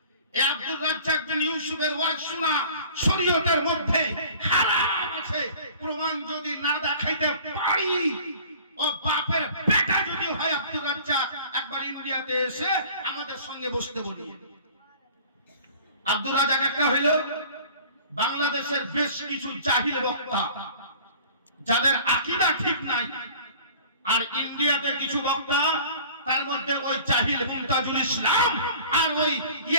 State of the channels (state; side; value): inverted; both; correlation -0.46